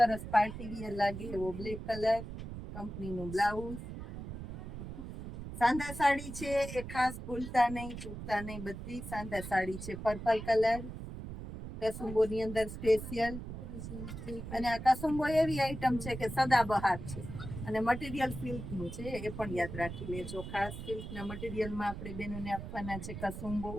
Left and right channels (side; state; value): right; noise; rumble, 9 dB below the sound